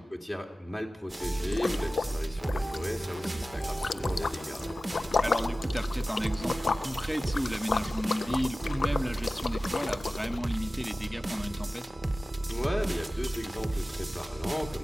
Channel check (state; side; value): normal; both; correlation 0.96